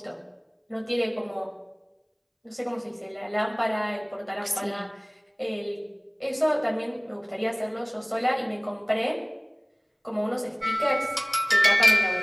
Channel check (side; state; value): both; identical; correlation 1.00